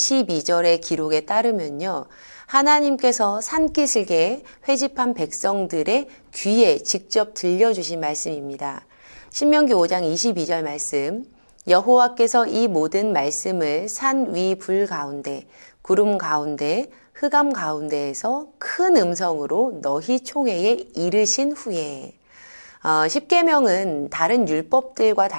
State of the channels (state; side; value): inverted; both; correlation -1.00